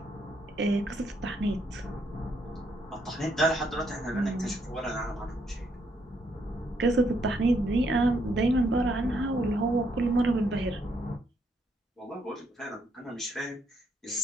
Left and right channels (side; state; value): both; normal; correlation 0.74